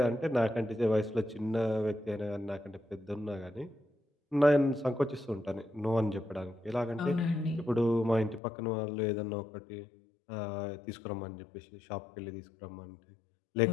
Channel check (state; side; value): drops out; right; at 8.4 s